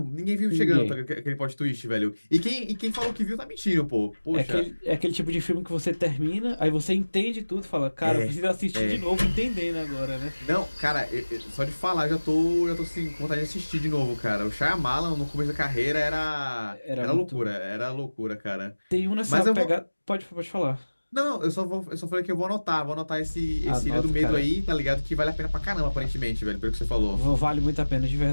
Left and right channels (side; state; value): both; inverted; correlation -1.00